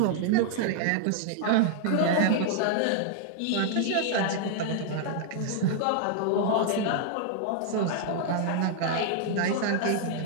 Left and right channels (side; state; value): both; different; correlation 0.00